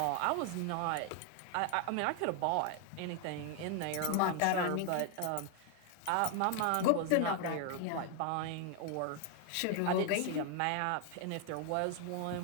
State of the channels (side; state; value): both; different; correlation 0.00